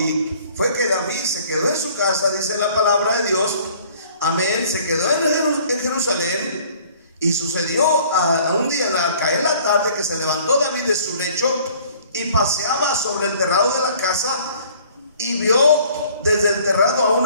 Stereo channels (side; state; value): both; inverted; correlation -0.55